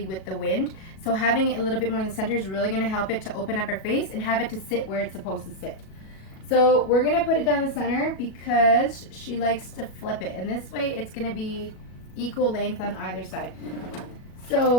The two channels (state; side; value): late; right; 37 ms